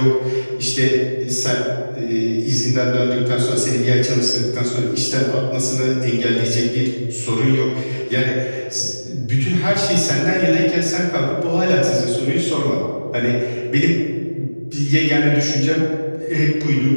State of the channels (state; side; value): inverted; both; correlation -1.00